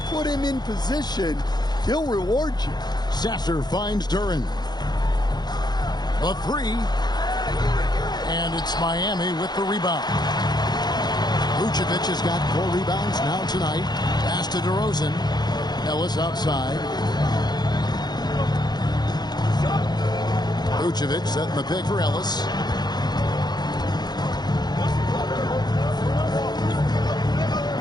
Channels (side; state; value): right; late; 0.20 ms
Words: put him in position, he'll reward you. Sasser finds Duren. A three. And it's Miami with the rebound. Vucevic has got 4 rebounds now tonight. Pass to DeRozan. Ellis outside. Vucevic setting the pick for Ellis.